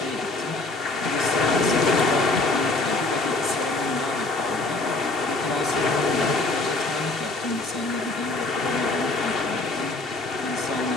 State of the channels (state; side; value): quieter; right; 3.1 dB